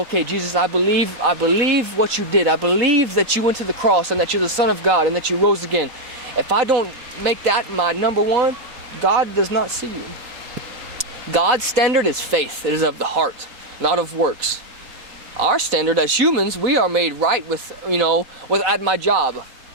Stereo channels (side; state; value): left; late; 4.0 ms